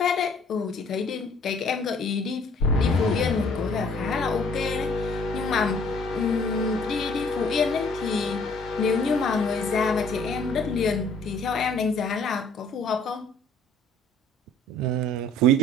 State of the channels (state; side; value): normal; both; correlation 0.58